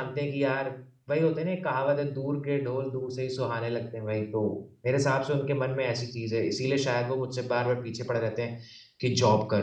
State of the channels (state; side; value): identical; both; correlation 1.00